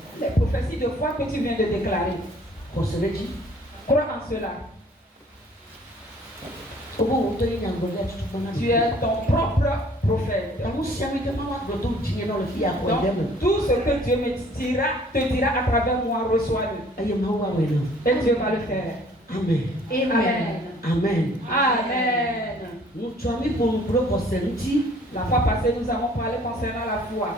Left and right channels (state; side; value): normal; both; correlation 0.56